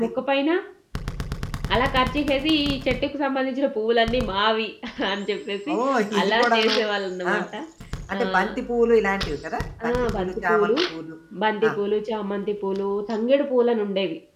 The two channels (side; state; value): both; identical; correlation 1.00